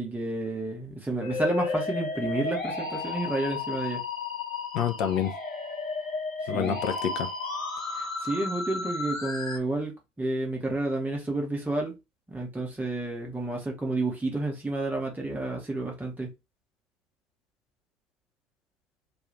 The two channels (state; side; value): normal; both; correlation 0.61